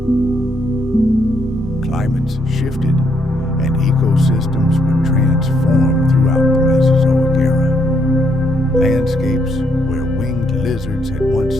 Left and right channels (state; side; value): normal; both; correlation 0.74